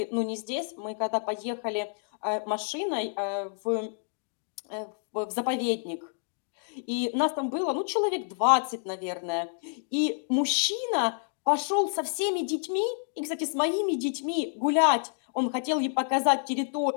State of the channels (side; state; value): right; silent; digital silence